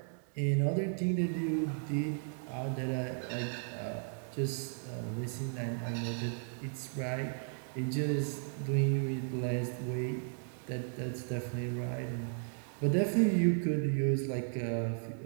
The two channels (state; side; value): silent; left; digital silence